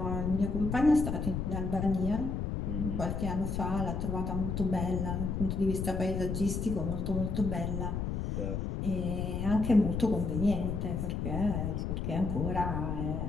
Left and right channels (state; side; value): noise; left; rumble, 2 dB below the sound